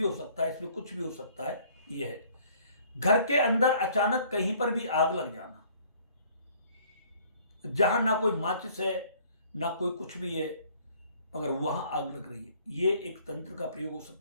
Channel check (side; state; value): both; inverted; correlation -0.58